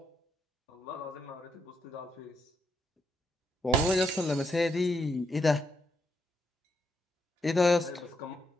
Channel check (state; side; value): normal; both; correlation 0.79